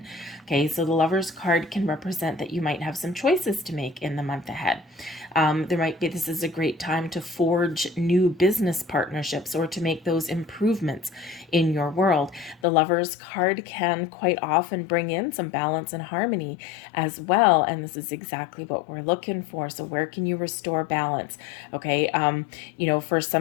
Okay, so the Lover's card can represent that you might have some choices to make in the month ahead. This is a great time to forge new business partnerships or to make those improvements in your world. The Lover's card can quite often bring in some balance and harmony as well. And this is exactly what we're looking for. So where can you restore balance? Okay. For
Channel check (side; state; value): right; drops out; at 12.7 s